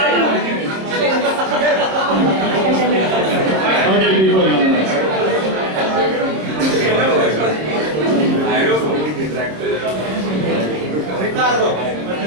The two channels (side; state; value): left; late; 26 ms